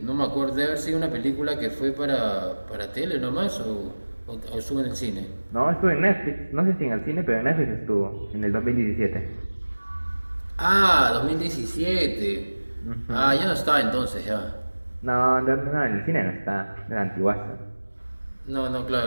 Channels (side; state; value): both; inverted; correlation -1.00